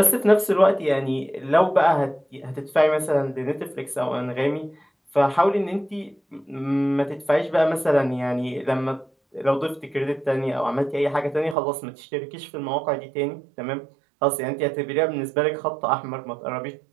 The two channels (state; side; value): drops out; left; at 11.6 s